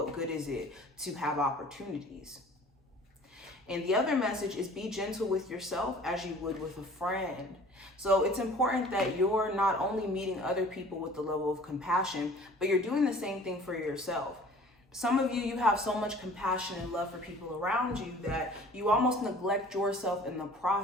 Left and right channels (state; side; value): normal; both; correlation 0.48